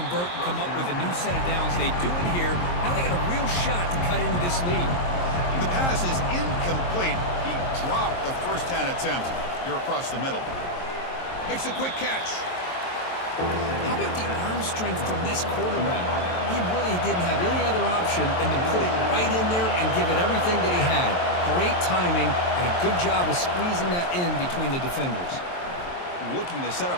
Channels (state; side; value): late; right; 23 ms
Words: and come up with a new set of downs. They do it here. Now they got a real shot to cut into this lead. The pass is incomplete. He dropped the first down attempt here across the middle. Makes a quick catch. How about the arm strength from this quarterback? He really didn't have any other option than to put it right in there and give it everything that he had. Great timing and a good job of squeezing that in between the defenders. Looking to set